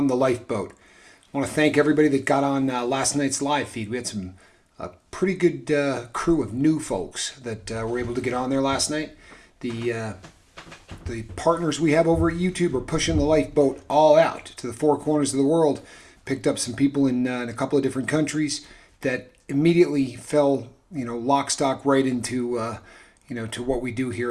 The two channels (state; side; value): identical; both; correlation 1.00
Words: the lifeboat. I want to thank everybody that got on last night's live feed. We had some pretty good crew of new folks that were able to get on there last night. The partners we have over at YouTube are pushing the lifeboat all out to the four corners of the world. Picked up some people in a couple of different countries that immediately fell, lock, stock right into, to what we do